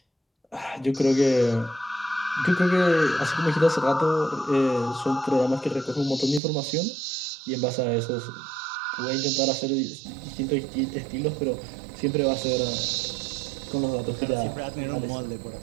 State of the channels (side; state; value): left; drops out; at 6.4 s